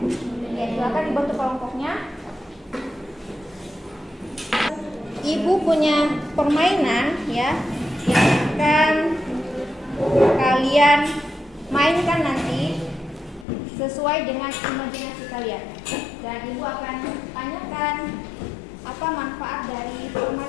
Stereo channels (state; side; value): drops out; right; at 13.5 s